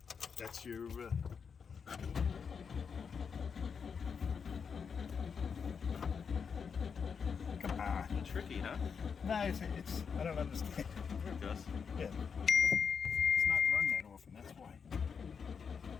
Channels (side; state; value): right; quieter; 6.2 dB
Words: That's your. Come on. Tricky, huh? Nah, it's. I don't understand. There it goes. Yeah. It's not run that often. That's why.